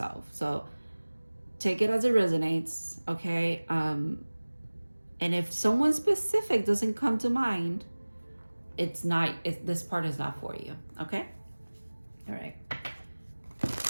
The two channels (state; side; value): inverted; both; correlation -1.00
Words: So take it as it resonates, okay? And if someone specific doesn't come to mind, this part is not for you, okay? All right.